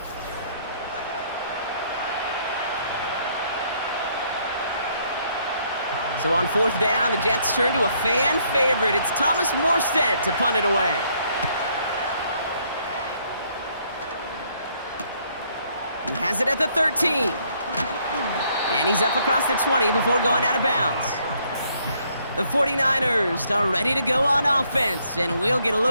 So on 4th down, the Jets turn to a fan favorite. It's Thomas Morstead to punt it away. He has it at the 13. And he's up across the 20 before going out of bounds. The 49ers are ready to go on offense, and we'll get a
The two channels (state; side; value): inverted; both; correlation -0.68